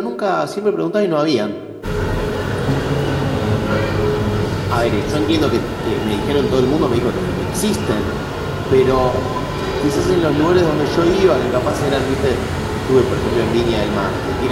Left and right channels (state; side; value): identical; both; correlation 1.00